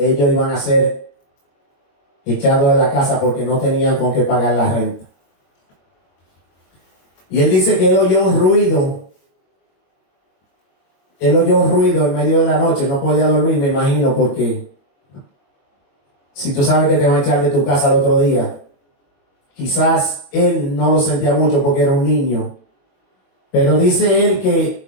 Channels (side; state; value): right; late; 22 ms